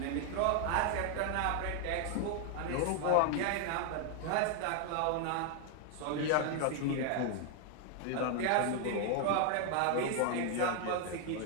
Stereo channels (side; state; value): both; different; correlation 0.00